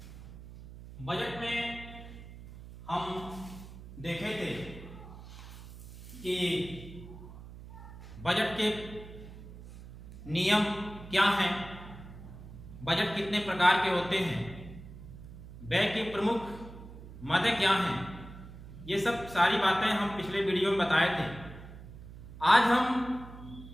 बजट में हम देखे थे कि बजट के नियम क्या हैं, बजट कितने प्रकार के होते हैं, व्यय की प्रमुख मदें क्या हैं, ये सब सारी बातें हम पिछले वीडियो में बताए थे। आज हम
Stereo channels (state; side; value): noise; right; hum, 15 dB below the sound